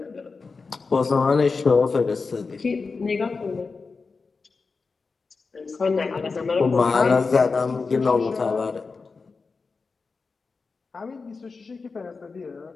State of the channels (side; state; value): right; quieter; 4.5 dB